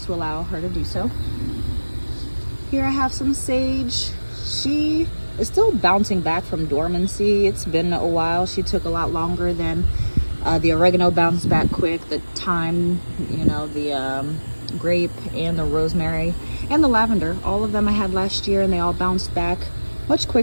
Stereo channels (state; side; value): inverted; both; correlation -1.00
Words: to allow her to do so. Here I have some sage. She is still bouncing back from dormancy. It's been a while. She took a lot longer than the oregano bounced back quick. The thyme, the grape and the rosemary and the lavender, all of them I had last year, and they all bounced back much